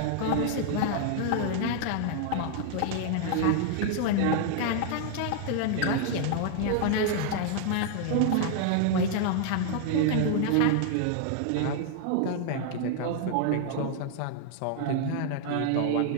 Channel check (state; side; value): different; both; correlation 0.00